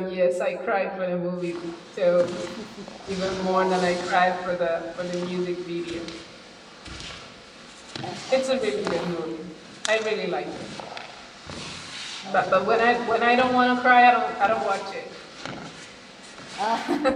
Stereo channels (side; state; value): both; identical; correlation 1.00